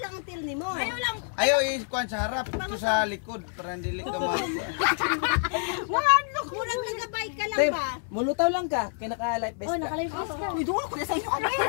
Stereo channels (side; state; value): right; silent; 60 dB below the other